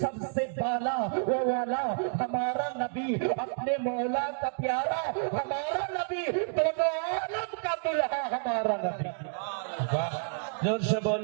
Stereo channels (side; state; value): left; silent; digital silence